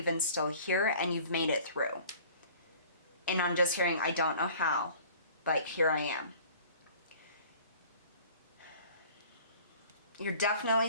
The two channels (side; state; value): both; inverted; correlation -0.48